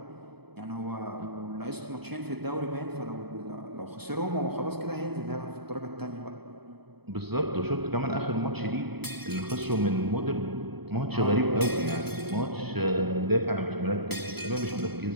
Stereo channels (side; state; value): left; late; 0.97 ms